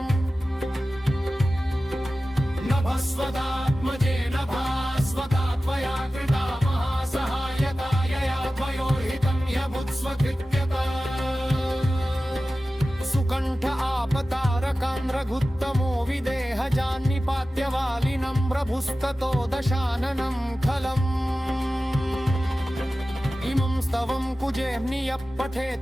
नभस्वदात्मजेन भास्वता त्वया कृता महासहायता यया त्वयोर्हितं ह्यभुत्स्वकृत्यता प्रभुस्ततो दशाननं खलम् इमं स्तवं कुजेऽह्नियः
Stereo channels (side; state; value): both; normal; correlation 0.95